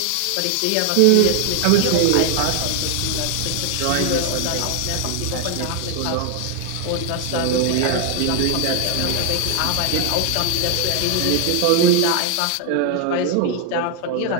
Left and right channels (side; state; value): both; different; correlation 0.00